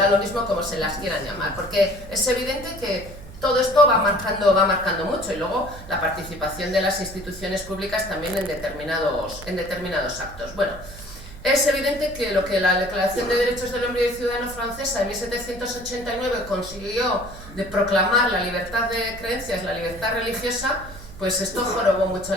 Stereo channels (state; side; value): noise; right; hum, 16 dB below the sound